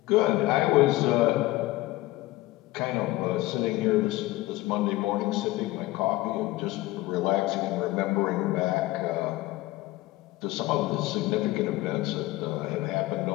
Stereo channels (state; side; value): quieter; right; 18.6 dB